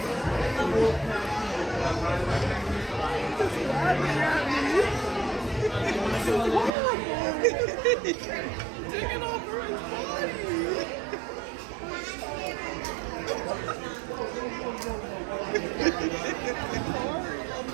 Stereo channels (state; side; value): drops out; left; at 6.7 s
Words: Taking over his body.